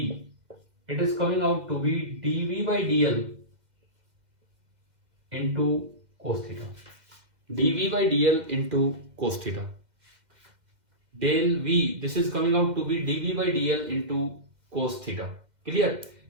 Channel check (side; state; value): left; late; 2.1 ms